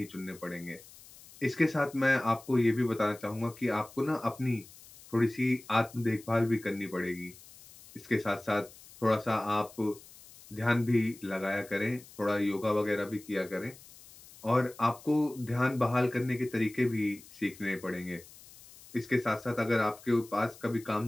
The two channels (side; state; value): left; noise; hiss, 21 dB below the sound